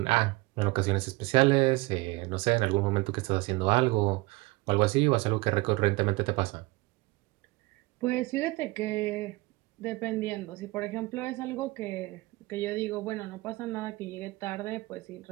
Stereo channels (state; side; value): quieter; left; 22.3 dB